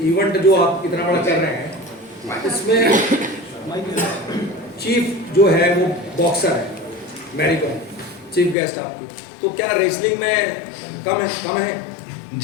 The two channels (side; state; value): right; drops out; at 8.6 s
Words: इवेंट जो आप इतना बड़ा कर रहे हैं, इसमें चीफ जो है वो बॉक्सर है, मैरी कॉम चीफ गेस्ट आपकी, तो क्या रेसलिंग में कम है?